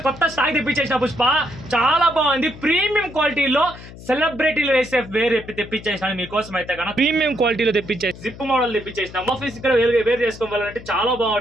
కొత్త స్టాక్ తెప్పించేసిన పుష్ప. చాలా బాగుంది. ప్రీమియం క్వాలిటీలో సెలబ్రిటీలు వేసే వేరే తెప్పించేసాను మీకోసం. అయితే కన్నా ప్రీమియం క్వాలిటీలో తెప్పించేసి జిప్ మోడల్ తెప్పించేసిన ఆఫీస్ ఇక్కడ వేరు చేసుకోవాలంటే చాలా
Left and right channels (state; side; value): noise; left; hum, 16 dB below the sound